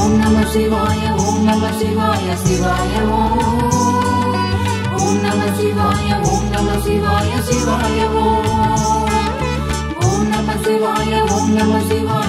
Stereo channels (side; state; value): both; identical; correlation 1.00